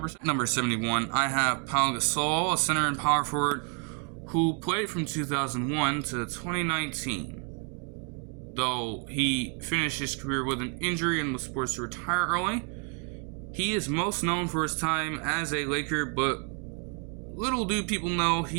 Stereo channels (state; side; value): quieter; left; 36.4 dB